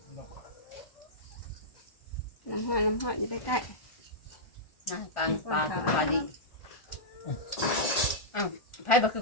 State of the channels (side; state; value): right; late; 1.4 ms